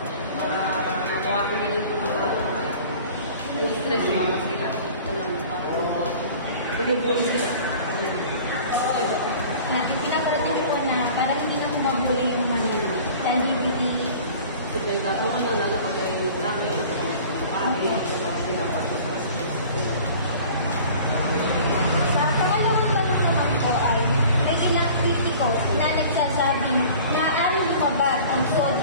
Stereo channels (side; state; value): both; inverted; correlation -0.45